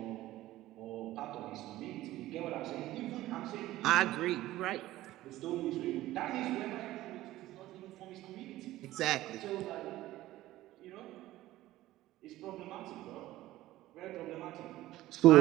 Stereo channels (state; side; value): quieter; left; 15.9 dB